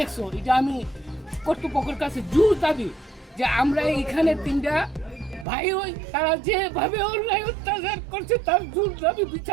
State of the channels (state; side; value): drops out; left; at 5.5 s